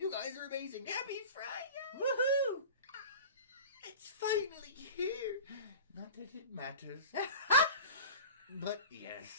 guys are amazing. Happy Friday! Woohoo! It's finally here. Not that it matters. But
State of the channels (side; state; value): both; inverted; correlation -0.36